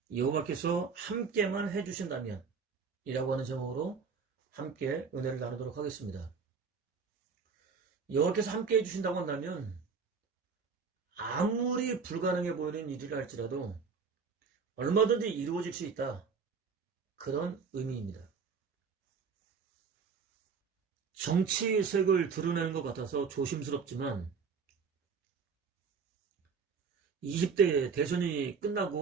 이라고 하는 제목으로 함께 은혜를 나누도록 하겠습니다. 여호와께서 함께 해주신다고 한다면 아무리 불가능해 보이는 일이라 할지라도 얼마든지 이루어질 수 있다, 그런 의미입니다. 정치색을 드러내는 것 같아서 조심스럽지만 20대 대선이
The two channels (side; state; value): left; quieter; 5.6 dB